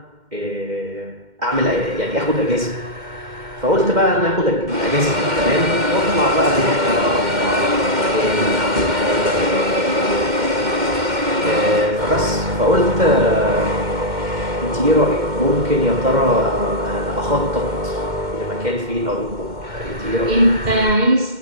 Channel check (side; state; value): left; late; 2.1 ms